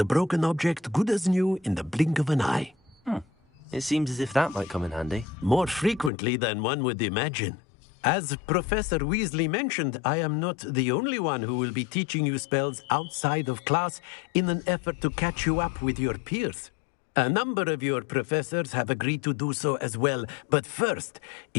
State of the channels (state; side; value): drops out; right; at 6.1 s